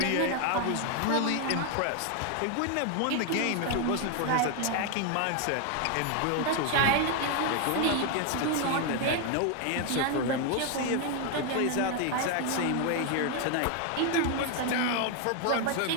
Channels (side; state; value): both; different; correlation 0.01